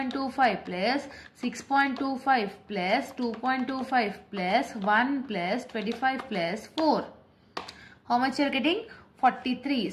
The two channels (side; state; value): both; identical; correlation 1.00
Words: plus 6.25 plus 2.25 plus 1 plus 25 plus 4. How much you are getting? 43.